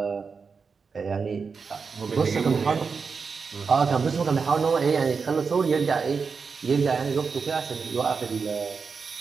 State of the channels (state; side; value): quieter; left; 5.3 dB